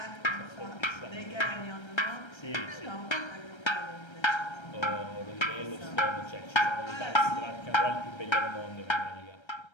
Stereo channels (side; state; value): right; late; 1.3 ms